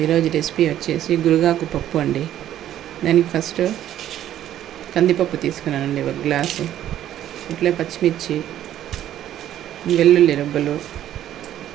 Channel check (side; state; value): left; quieter; 11.8 dB